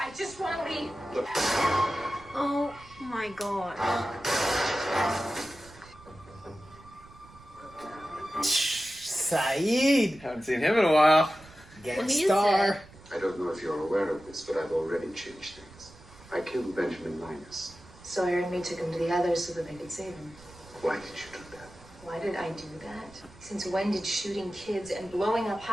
just want to leave. Oh my god. Saeed! Haven't seen him in a while. Gangstar. I don't know if you're aware of this, but I've already changed things. I killed Benjamin Linus. Sawyer and me took him to the others so that they could save him. Why did you do that? Why did I do that? Since when did shooting kids and blowing up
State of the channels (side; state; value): right; noise; rumble, 22 dB below the sound